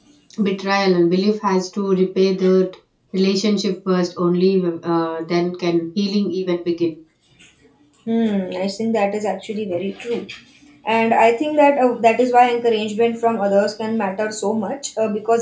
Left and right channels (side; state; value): both; identical; correlation 1.00